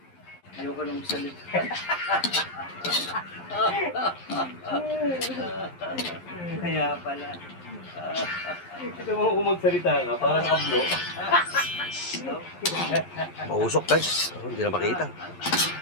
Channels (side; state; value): right; late; 11 ms